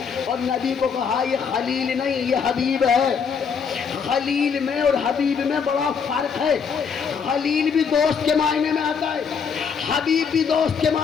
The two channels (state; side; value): quieter; right; 6.3 dB